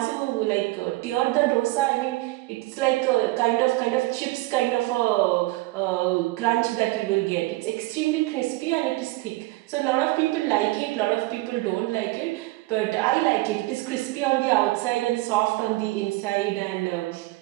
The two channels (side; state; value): left; quieter; 20.4 dB